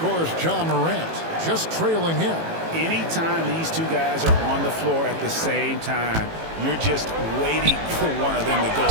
John Morant just trailing him. Anytime these two guys are on the floor at the same time, you're just waiting for one of them to go,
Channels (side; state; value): left; late; 18 ms